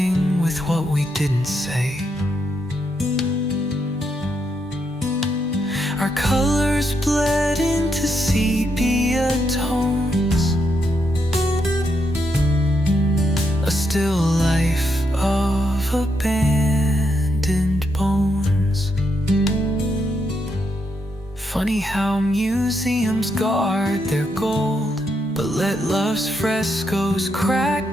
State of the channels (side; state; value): both; normal; correlation 0.80